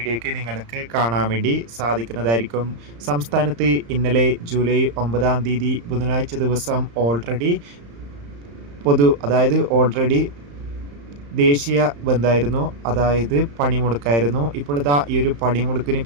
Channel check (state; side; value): late; left; 35 ms